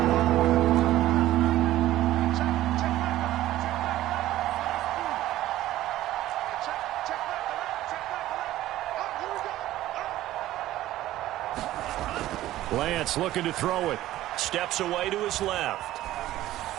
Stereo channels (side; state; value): left; quieter; 14.8 dB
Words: Lance looking to throw it. Steps away to his left.